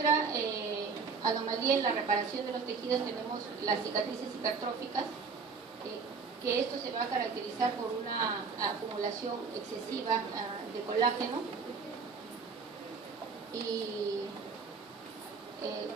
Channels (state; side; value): quieter; left; 5.1 dB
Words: anomalía en la reparación de los tejidos, tenemos las cicatrices hipertróficas, que esto se va a caracterizar por una acumulación excesiva de colágeno, y